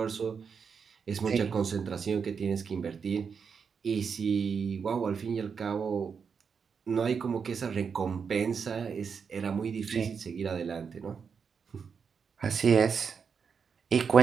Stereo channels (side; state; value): left; quieter; 6.2 dB